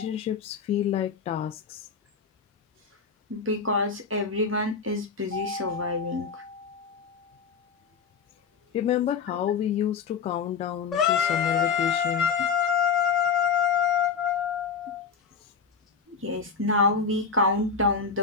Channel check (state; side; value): quieter; right; 5.7 dB